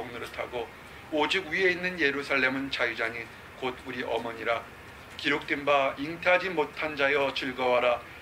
오직 위에 있는 예루살렘은 자유자니 곧 우리 어머니라. 기록된 바 잉태하지 못한 자여 즐거워라.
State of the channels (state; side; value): identical; both; correlation 1.00